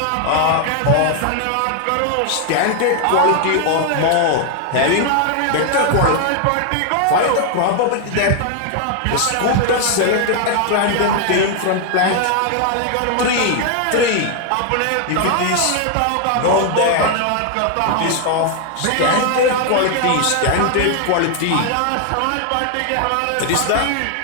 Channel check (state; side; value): different; both; correlation 0.00